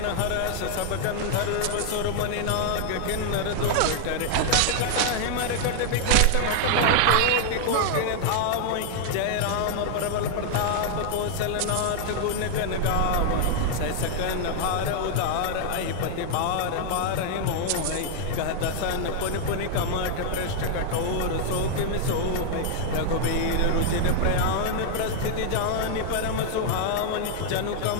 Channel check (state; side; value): different; both; correlation 0.00